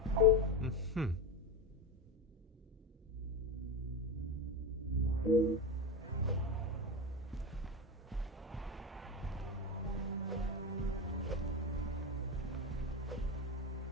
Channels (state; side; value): normal; both; correlation 0.18